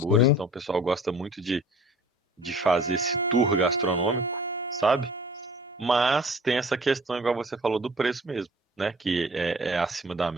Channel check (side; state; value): both; normal; correlation 0.49